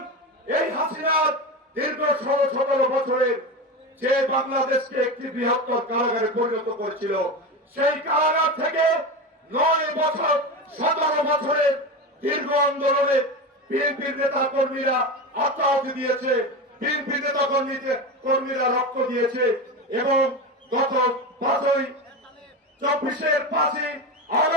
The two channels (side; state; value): both; normal; correlation 0.22